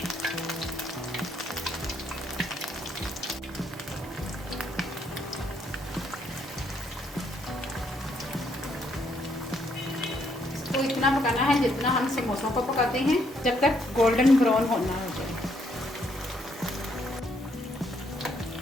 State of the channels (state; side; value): normal; both; correlation 0.71